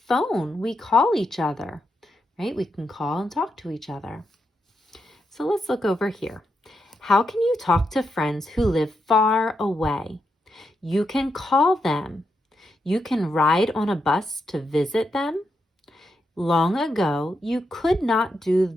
phone. We call each other, right? We can call and talk to each other. So let's look over here. How can you talk to friends who live far away? You can call them. You can ride on a bus to visit them. Long ago, you could not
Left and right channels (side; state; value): both; normal; correlation 0.83